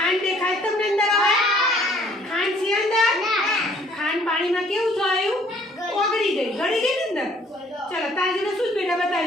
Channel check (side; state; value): both; normal; correlation 0.60